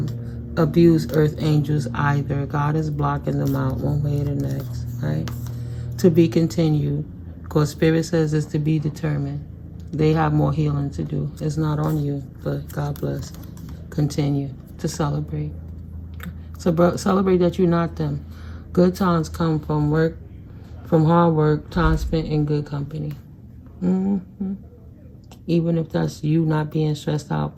abuse earth angels either. God is blocking them out one way or the next, right? To be continued. Because Spirit says it's to be determined. They have more healing to do. It's not on you, but God bless. Continue to celebrate. So celebrate that you're not them. Good times come from work, from hard work, time spent in good company. Even if that's you not being stressed out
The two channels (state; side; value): identical; both; correlation 1.00